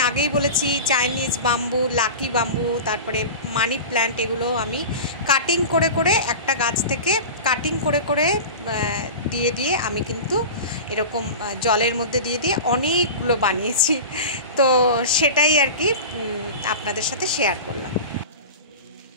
আগেই বলেছি, চাইনিজ বাম্বু, লাকি বাম্বু, তারপরে মানি প্ল্যান্ট, এগুলো আমি কাটিং করে করে একটা গাছ থেকে কাটিং করে করে দিয়ে আমি কিন্তু এরকম জলের মধ্যে দিয়ে অনেকগুলো বানিয়েছি। তো সেটাই আর কি আপনাদের সাথে শেয়ার করলাম।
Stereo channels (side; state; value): both; inverted; correlation -0.30